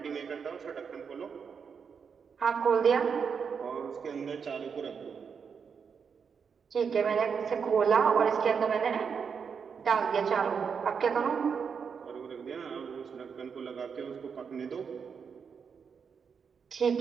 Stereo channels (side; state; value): left; quieter; 6.3 dB